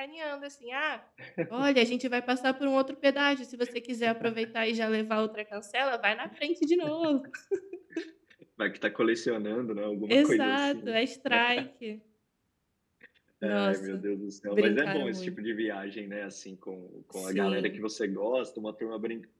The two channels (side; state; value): both; identical; correlation 1.00